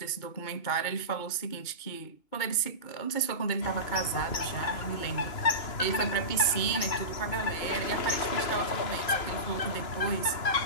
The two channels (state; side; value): late; right; 2.9 ms